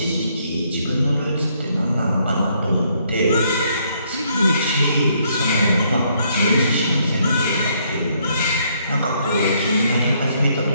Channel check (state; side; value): inverted; both; correlation -0.70